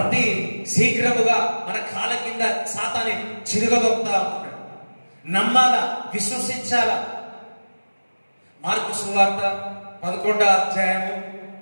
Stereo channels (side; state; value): both; inverted; correlation -1.00